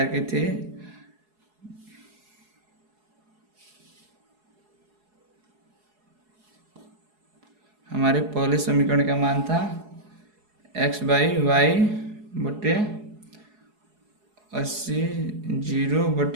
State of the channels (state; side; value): late; left; 4.7 ms